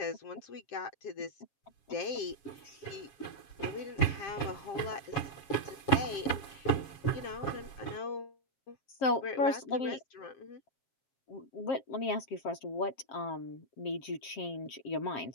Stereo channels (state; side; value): late; right; 7.2 ms